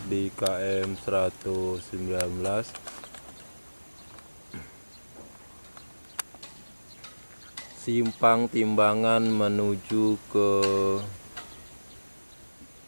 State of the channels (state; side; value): inverted; both; correlation -1.00